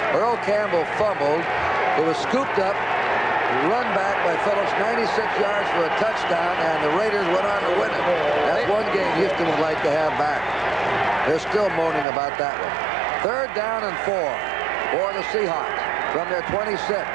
Earl Campbell fumbled. It was scooped up, run back by Phillips, 96 yards for a touchdown, and the Raiders went on to win it. That's one game Houston would like to have back. They're still moaning about that one. 3rd down and 4 for the Seahawks from their 26.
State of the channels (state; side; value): drops out; left; at 12.1 s